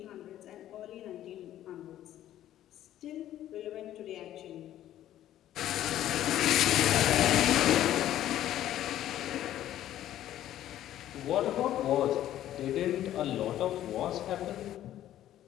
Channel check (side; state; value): right; quieter; 12.5 dB